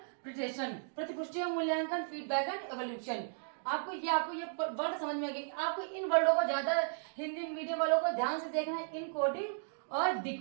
प्रतिपुष्टि एवं मूल्यांकन, फीडबैक एंड एवोल्यूशन। आपको ये वर्ड समझ में आ गई। आपको इन वर्डों को ज्यादा हिंदी मीडियम वालों को ध्यान से देखना है, इनकोडिंग और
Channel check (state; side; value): silent; left; digital silence